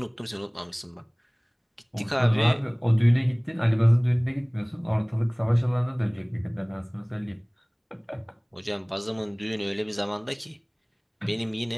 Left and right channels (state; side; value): identical; both; correlation 1.00